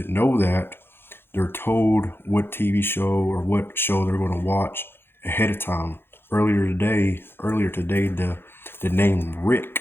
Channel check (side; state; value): right; late; 0.11 ms